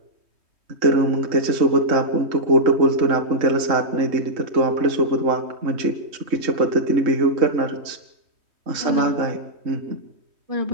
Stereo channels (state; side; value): late; left; 3.2 ms